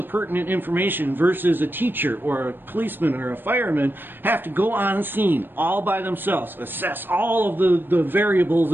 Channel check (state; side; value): late; left; 0.096 ms